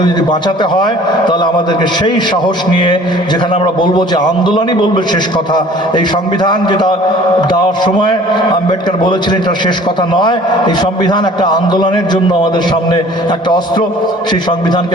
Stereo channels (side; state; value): both; normal; correlation 0.49